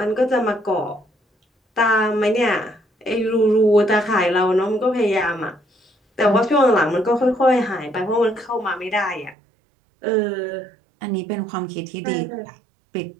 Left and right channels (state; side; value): drops out; left; at 9.3 s